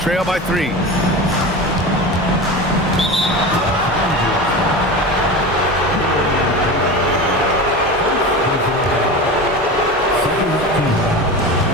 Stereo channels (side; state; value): both; normal; correlation 0.28